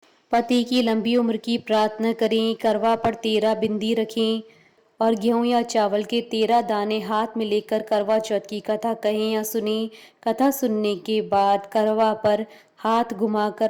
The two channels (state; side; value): identical; both; correlation 1.00